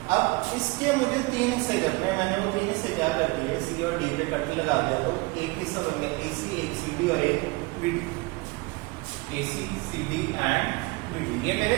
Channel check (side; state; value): left; quieter; 24.7 dB